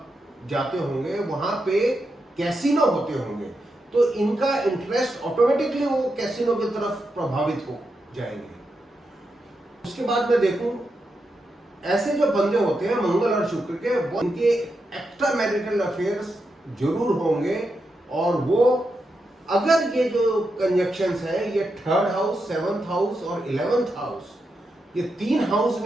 जाते होंगे वहां पे कैसीनो होते होंगे, तो इनका इंटरेस्ट ऑटोमेटिकली वो कैसीनो की तरफ प्रभावित हो जाएंगे। उसके बाद मैं देखूं ऐसे जो बंदे होते हैं मंगल और शुक्र के, वो इनके एक्स्ट्रा मैरिटल अफेयर्स जरूर होंगे। और वो अगर ये जो कंजक्शंस है ये 3rd हाउस, 7th हाउस और 11th हाउस, ये 3 हाउस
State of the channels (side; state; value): both; normal; correlation 0.86